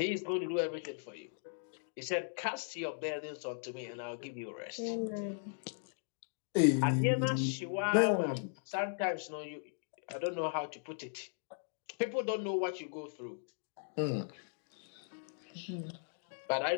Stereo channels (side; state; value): right; silent; digital silence